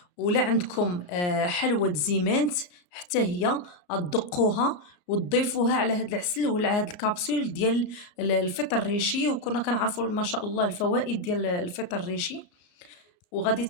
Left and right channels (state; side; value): late; right; 34 ms